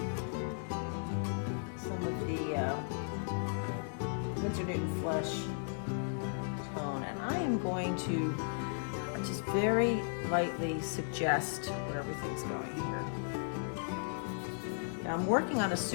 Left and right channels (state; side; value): silent; right; 54 dB below the other